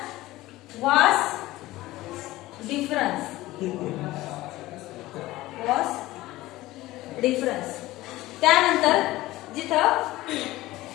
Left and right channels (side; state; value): right; quieter; 17.6 dB